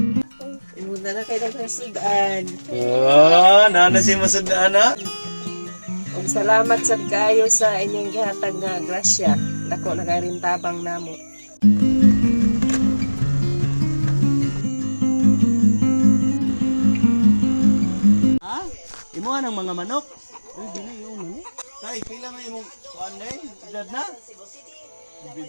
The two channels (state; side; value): inverted; both; correlation -1.00